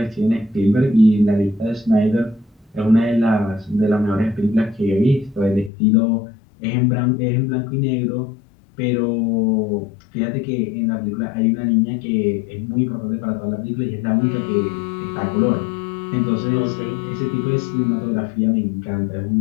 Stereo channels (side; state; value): right; drops out; at 5.7 s